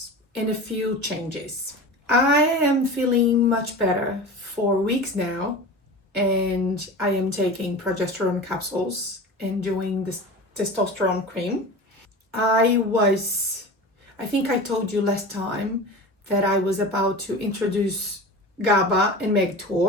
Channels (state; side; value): normal; both; correlation 0.32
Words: and a few changes. I am feeling much better for weeks now and I am taking progesterone capsules and doing this testosterone cream. I think I told you last time that I was about to introduce GABA and